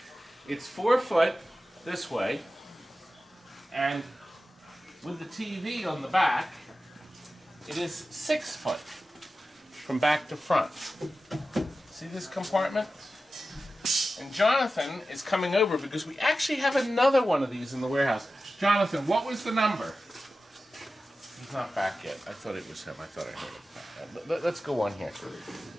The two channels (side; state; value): both; normal; correlation 0.94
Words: It's 4 foot this way, and with the TV on the back, it is 6 foot from back to front. See this compartment? And Jonathan is coming over because we actually have another one of these in the warehouse. Jonathan, what was the number? He's not back yet. I thought it was him. I thought I heard it. Let's go on here.